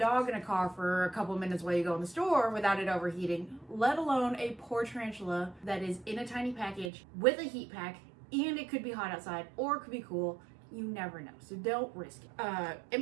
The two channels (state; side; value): drops out; left; at 6.9 s